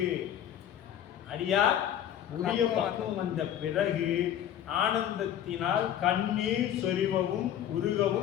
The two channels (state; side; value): quieter; right; 10.5 dB